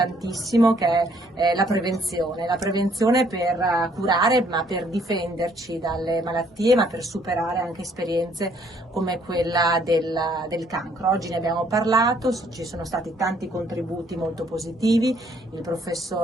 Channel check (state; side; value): normal; both; correlation 0.65